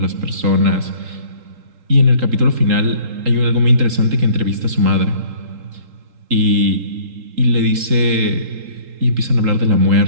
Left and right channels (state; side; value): late; left; 3.8 ms